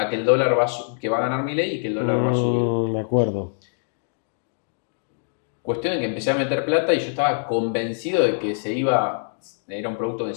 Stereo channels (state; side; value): silent; right; digital silence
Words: que el dólar que va a ganar Milei y que el dólar va a subir. Me acuerdo. Cuestión de que empecé a meter plata y yo estaba convencido de que era un producto que